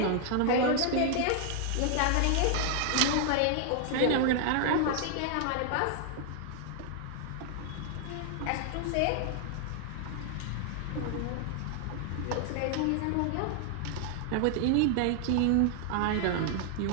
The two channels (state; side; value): different; both; correlation 0.00